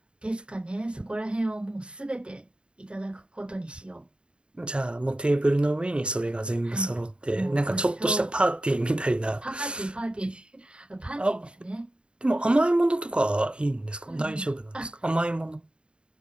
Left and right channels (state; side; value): late; left; 0.053 ms